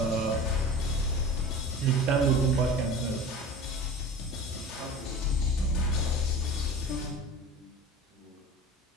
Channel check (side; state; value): both; normal; correlation 0.36